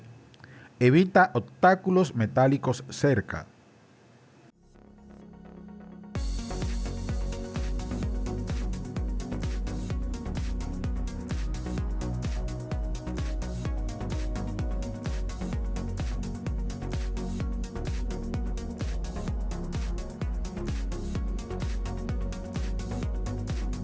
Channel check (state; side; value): identical; both; correlation 1.00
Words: Evita obstáculos metálicos cerca.